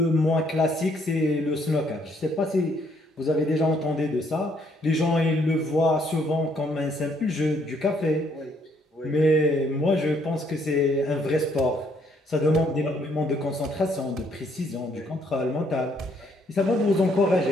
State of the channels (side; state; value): both; normal; correlation 0.68